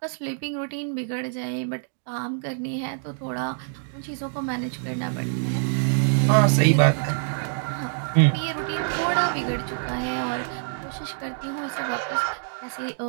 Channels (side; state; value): left; silent; digital silence